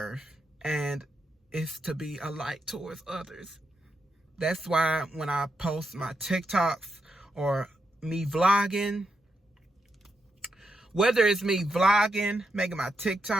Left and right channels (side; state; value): both; normal; correlation 0.83